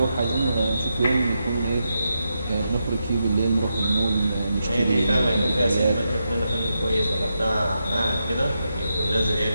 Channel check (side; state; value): both; inverted; correlation -0.86